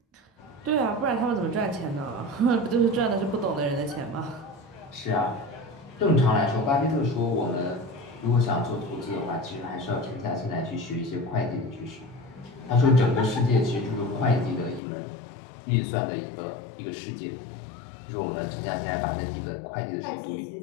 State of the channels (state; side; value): drops out; right; at 14.8 s